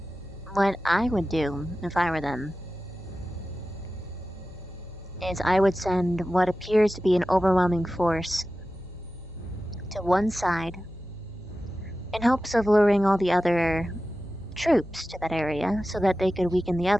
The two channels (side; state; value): both; normal; correlation 0.94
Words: What I would do, if I were them, is I would send what appears to be an overwhelming force to one side in hopes of luring all the other troops to that area so that they could weaken the